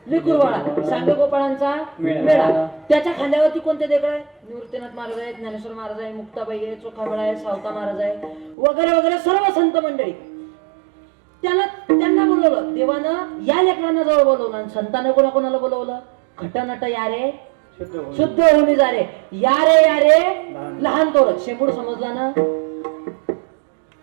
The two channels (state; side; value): drops out; left; at 8.6 s